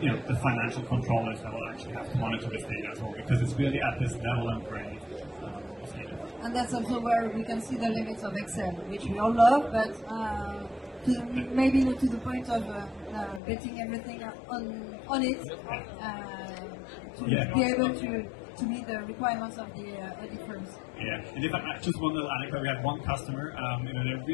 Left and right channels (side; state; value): right; drops out; at 13.4 s